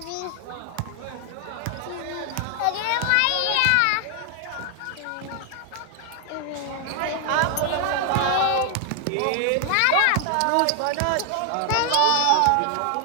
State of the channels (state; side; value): different; both; correlation 0.00